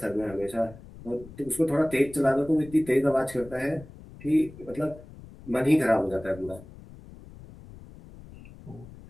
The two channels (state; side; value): noise; left; rumble, 18 dB below the sound